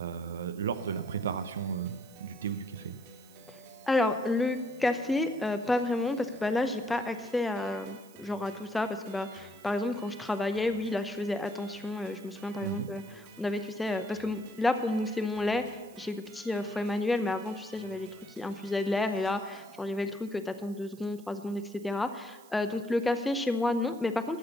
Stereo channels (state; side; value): noise; right; hiss, 24 dB below the sound